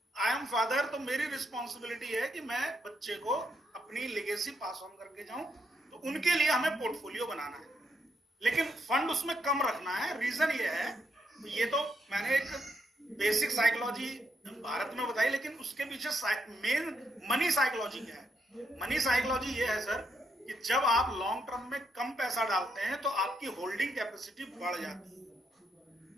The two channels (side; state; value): both; normal; correlation 0.78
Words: आई एम फादर, तो मेरी रिस्पॉन्सिबिलिटी है कि मैं बच्चे को अपनी लेगेसी पास ऑन करके जाऊं। तो उनके लिए हमें पोर्टफोलियो बनाना है, लेकिन फंड उसमें कम रखना है। रीजन ये है, ये तो मैंने एक बेसिक साइकोलॉजी भारत में बताई, लेकिन उसके पीछे मेन मनी साइकोलॉजी क्या है? मनी साइकोलॉजी ये है सर कि जब आप लॉन्ग टर्म में कम पैसा डालते हैं तो आपकी होल्डिंग कैपेसिटी बढ़ जाती है।